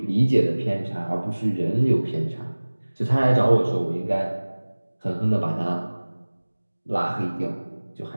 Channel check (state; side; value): inverted; both; correlation -1.00